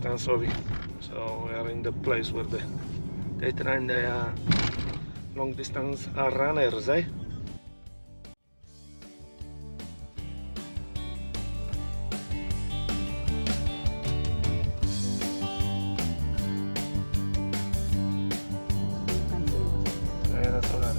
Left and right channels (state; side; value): inverted; both; correlation -1.00